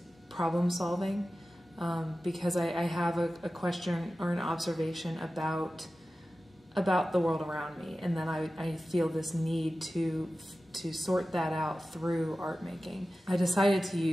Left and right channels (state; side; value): normal; both; correlation 0.95